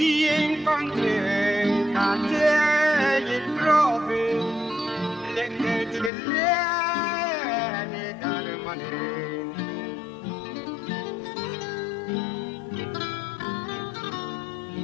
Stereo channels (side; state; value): right; drops out; at 6.1 s